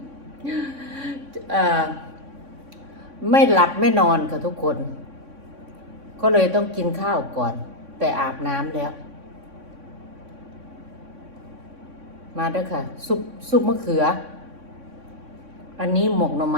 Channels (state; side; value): late; left; 3.6 ms